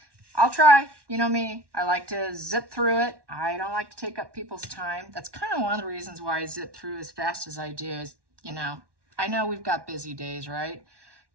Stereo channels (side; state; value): left; late; 1.1 ms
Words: I'll try. You know me. I like to zip through it. I don't like to take up people's time. That's kind of one of the reasons why I zip through as fast as I do is, I know we've got busy days, right?